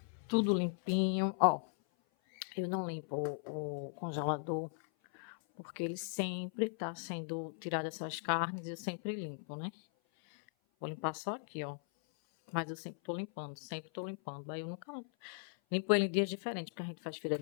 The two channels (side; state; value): right; silent; 52 dB below the other